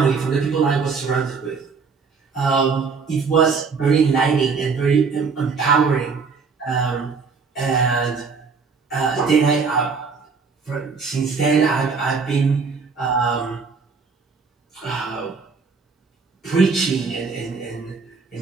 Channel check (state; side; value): quieter; left; 5.1 dB